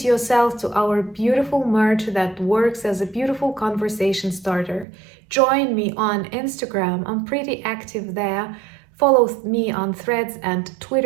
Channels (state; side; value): drops out; left; at 4.9 s